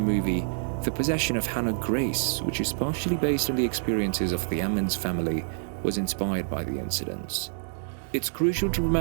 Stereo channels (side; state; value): left; silent; digital silence